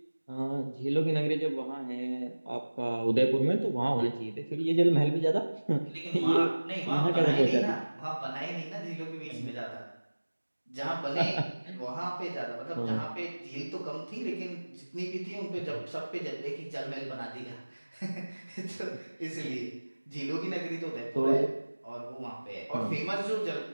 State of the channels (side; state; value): both; inverted; correlation -1.00